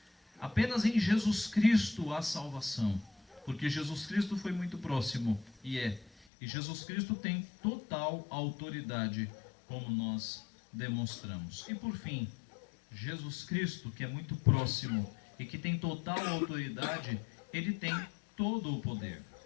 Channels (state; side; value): drops out; right; at 6.1 s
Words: Apenas em Jesus Cristo há salvação. Porque Jesus Cristo foi muito próximo, e é. E Jesus Cristo tem total autoridade, como nós demonstramos. E por fim, Jesus Cristo, que é muito próximo e que tem total autoridade, ele tem todo o poder.